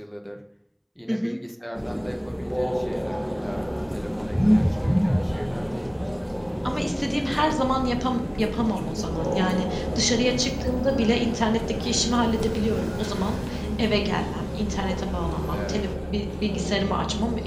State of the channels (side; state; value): both; identical; correlation 1.00